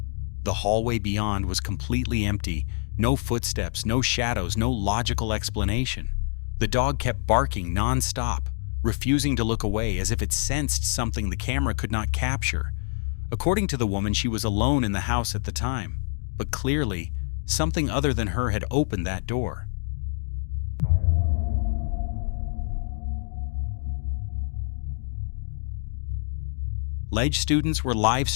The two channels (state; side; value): silent; right; digital silence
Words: The hallway beyond was completely empty. No footsteps, no shadows, no logical explanation. The dog kept barking non-stop, refusing to look away as if it sensed something the camera could not capture. According to the woman, she was alone in the house at the time, but clearly, something other than her had opened that door. Ledge students were live